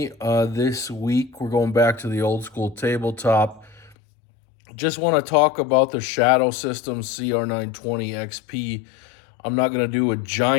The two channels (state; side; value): drops out; right; at 4.0 s